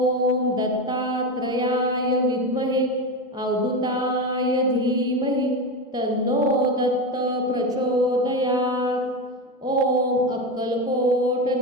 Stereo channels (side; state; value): both; normal; correlation 0.18